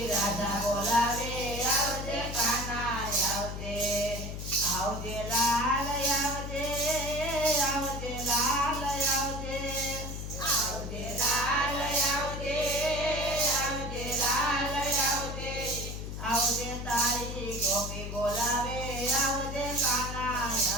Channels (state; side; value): noise; left; hum, 6 dB below the sound